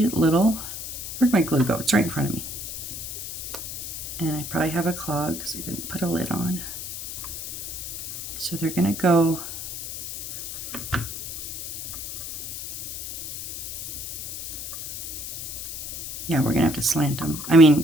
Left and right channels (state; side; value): noise; left; hiss, 7 dB below the sound